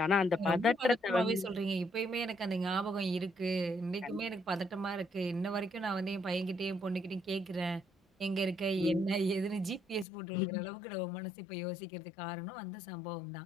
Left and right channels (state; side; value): drops out; right; at 10.1 s